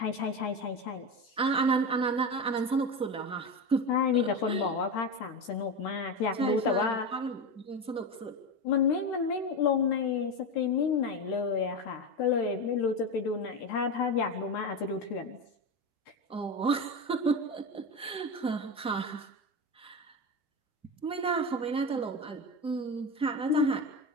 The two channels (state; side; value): normal; both; correlation 0.19